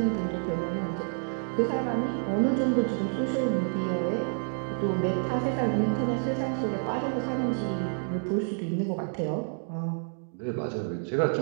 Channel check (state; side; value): silent; left; digital silence